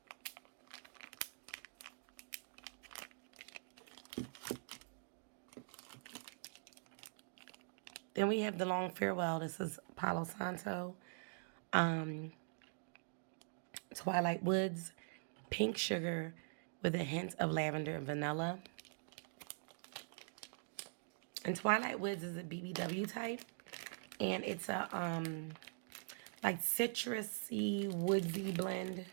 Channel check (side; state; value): left; silent; digital silence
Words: Then we have the Long Farewell. This is Palo Santo, Twilight Woods, pink sugar with a hint of lavender and vanilla. And Twilight Woods is a BBW type, and it's a like citrusy, woodsy blend.